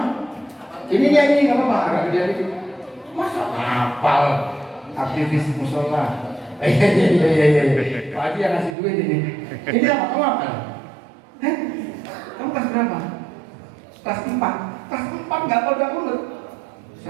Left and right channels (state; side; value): drops out; left; at 8.8 s